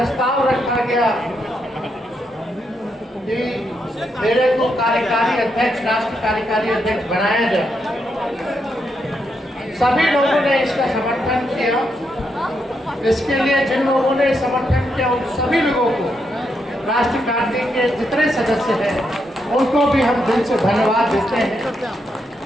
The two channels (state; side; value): normal; both; correlation 0.81